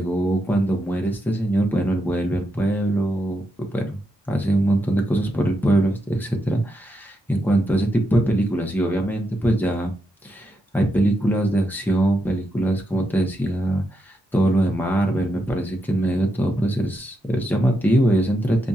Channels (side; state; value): both; normal; correlation 0.83